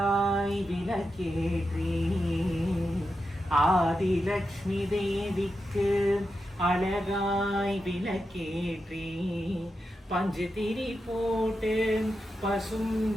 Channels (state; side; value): normal; both; correlation 0.88